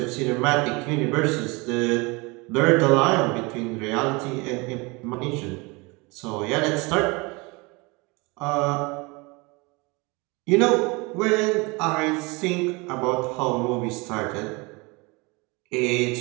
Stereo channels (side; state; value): left; quieter; 26.6 dB